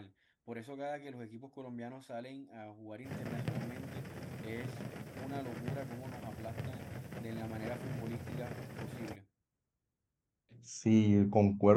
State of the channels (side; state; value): both; identical; correlation 1.00